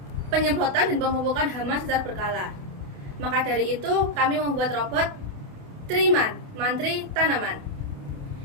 penyemprotan dan pemupukan hama secara berkala. Maka dari itu, kami membuat robot Triman, Mantri Tanaman.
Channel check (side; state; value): left; late; 28 ms